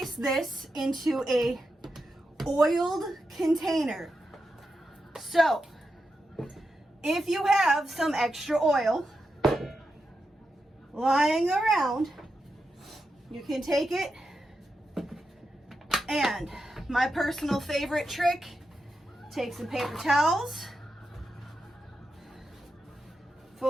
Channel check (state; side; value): normal; both; correlation 0.88